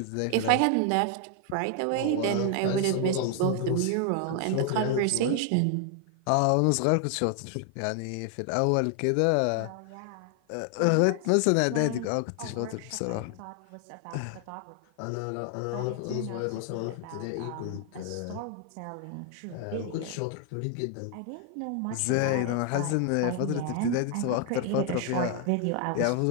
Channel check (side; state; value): both; different; correlation 0.00